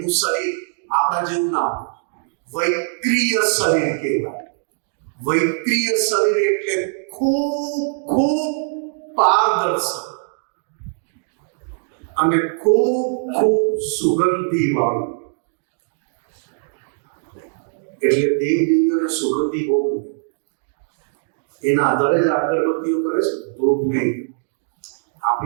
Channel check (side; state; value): left; silent; digital silence